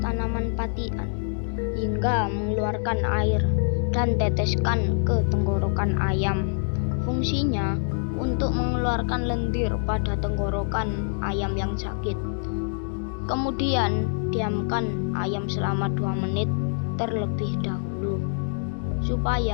tanaman patian hingga mengeluarkan air dan teteskan ke tenggorokan ayam. Fungsinya untuk mengeluarkan lendir pada tenggorokan ayam yang sakit. Kemudian diamkan ayam selama 2 menit terlebih dahulu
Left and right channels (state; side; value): silent; right; digital silence